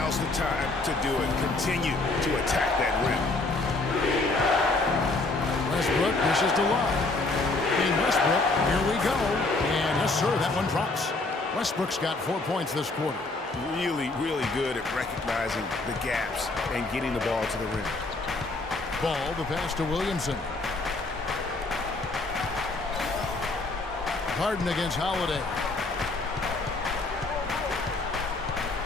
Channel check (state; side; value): quieter; right; 3.3 dB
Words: the time to do it. Continue to attack that rim. Westbrook pushes to Love. And Westbrook, here we go. And yes, sir, that one drops. Westbrook's got 4 points this quarter. Really, really good at recognizing the gaps and getting the ball to the rim. Ball, the pass to Williamson. Harden against Holiday.